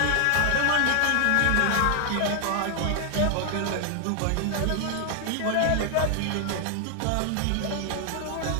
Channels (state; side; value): different; both; correlation 0.00